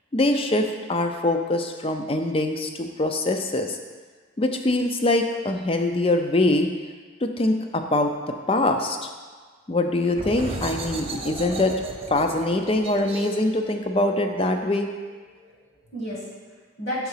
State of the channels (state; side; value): normal; both; correlation 0.45